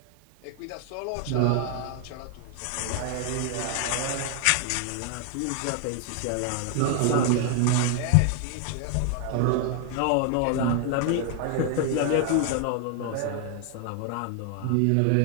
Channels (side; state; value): both; different; correlation 0.00